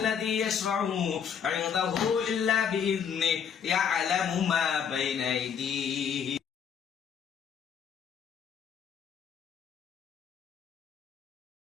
يشفع عنده إلا بإذنه يعلم ما بين أيديه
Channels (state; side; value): quieter; right; 7.7 dB